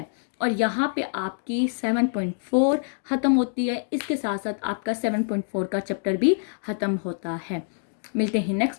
और यहाँ पे आपकी 7.4 ख़त्म होती है, इसके साथ साथ आपका 7.4 का चैप्टर भी ख़त्म होता है। मिलते हैं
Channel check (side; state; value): right; silent; digital silence